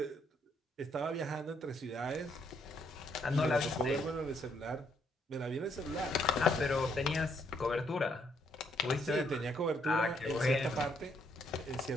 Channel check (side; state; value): both; normal; correlation 0.72